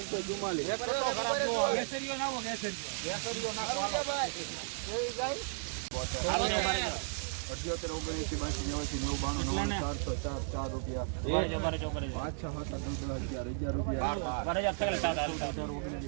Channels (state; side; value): silent; left; digital silence